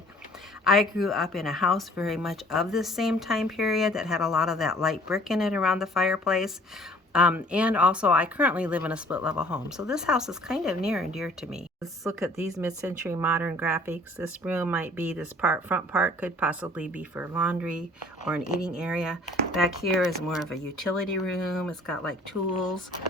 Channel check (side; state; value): both; normal; correlation 0.54